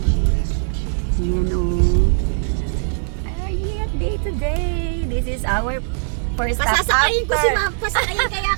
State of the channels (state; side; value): silent; left; digital silence